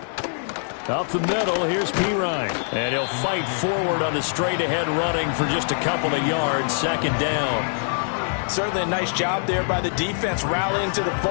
Up the middle, here's Perine. And he'll fight forward on the straight-ahead running for just a couple of yards, 2nd down. Certainly a nice job there by the defense rallying to the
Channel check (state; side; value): silent; right; 63 dB below the other